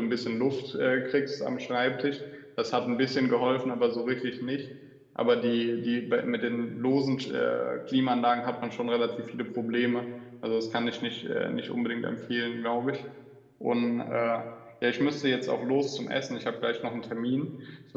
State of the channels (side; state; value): both; identical; correlation 1.00